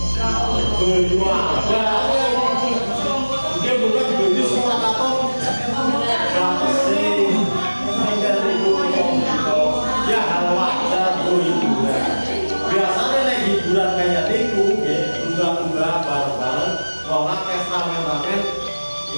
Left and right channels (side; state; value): both; inverted; correlation -1.00